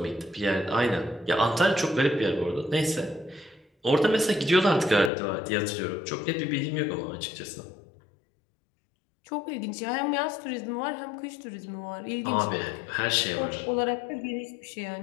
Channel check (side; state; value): right; drops out; at 5.1 s